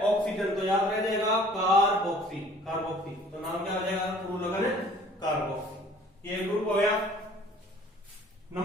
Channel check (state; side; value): normal; both; correlation 0.52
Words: ऑक्सीजन, तो याद रह जाएगा कार्बोक्सी, कार्बोक्सी। तो नाम क्या हो जाएगा? पूर्व लगन कार्बोक्सी। ये ग्रुप हो गया।